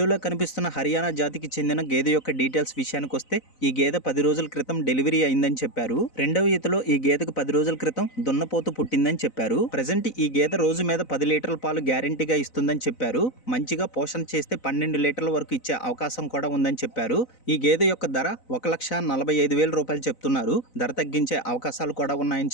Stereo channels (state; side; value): late; right; 4.0 ms